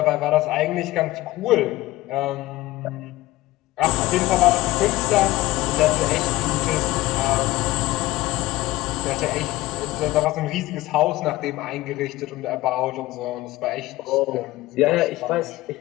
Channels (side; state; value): right; quieter; 17.8 dB